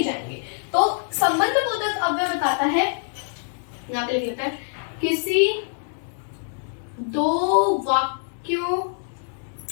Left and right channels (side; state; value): right; silent; 62 dB below the other